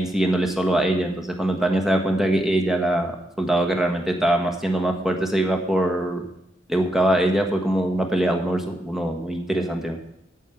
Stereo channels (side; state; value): both; normal; correlation 0.81